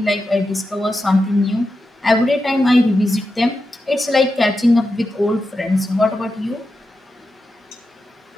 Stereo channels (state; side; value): normal; both; correlation 0.89